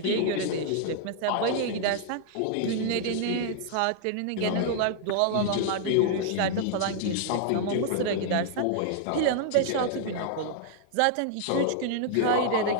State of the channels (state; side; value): different; both; correlation 0.00